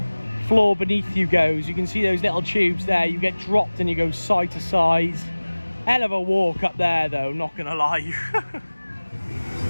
floor beneath you goes. You can see those little tubes there. You get dropped and you go side to side. Hell of a walk up there, though, not gonna lie.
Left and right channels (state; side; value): inverted; both; correlation -1.00